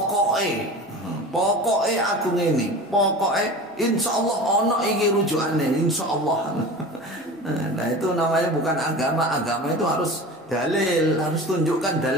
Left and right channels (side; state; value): both; normal; correlation 0.34